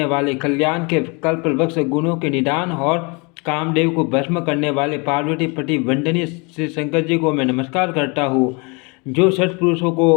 वाले, कल्याण के कल्पवृक्ष, गुणों के निदान और कामदेव को भस्म करने वाले पार्वती पति वंदनीय श्री शंकर जी को मैं नमस्कार करता हूँ, जो सत्पुरुषों को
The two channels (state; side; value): quieter; right; 30.5 dB